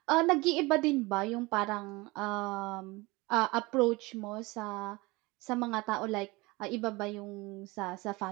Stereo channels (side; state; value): left; quieter; 23.4 dB